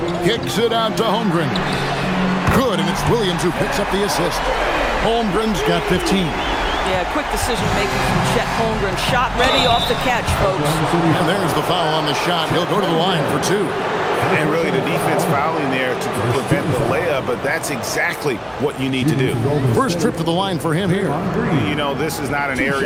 Kicks it out to Holmgren. Good, and it's Williams who picks up the assist. Holmgren's got 15. Yeah, quick decision-making from Chet Holmgren. Shot ready off the catch, folks. And there's the foul on the shot. He'll go to the line for 2. And really the defense fouling there to prevent the layup, but that's exactly what you need to do. First trip to the line for him here. You know, this is not an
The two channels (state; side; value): identical; both; correlation 1.00